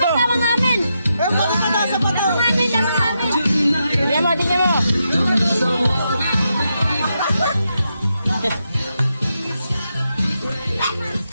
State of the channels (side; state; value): both; inverted; correlation -0.84